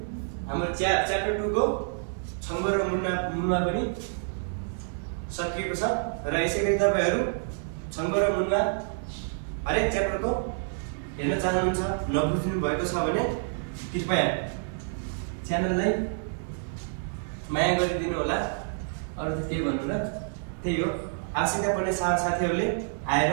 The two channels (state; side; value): silent; left; digital silence